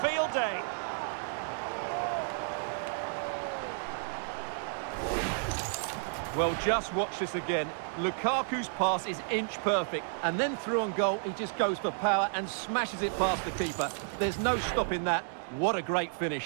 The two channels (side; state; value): left; silent; digital silence